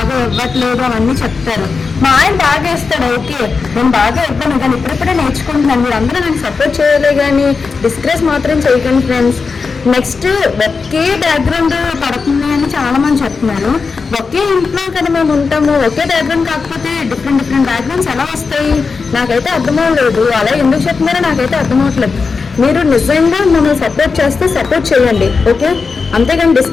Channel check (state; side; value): quieter; right; 4.8 dB